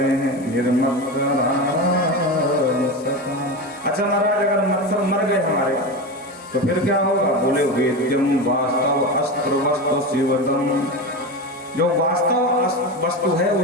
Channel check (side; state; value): both; normal; correlation 0.22